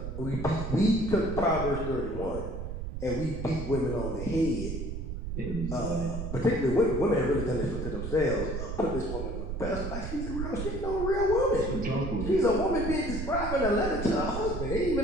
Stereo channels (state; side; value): noise; right; rumble, 5 dB below the sound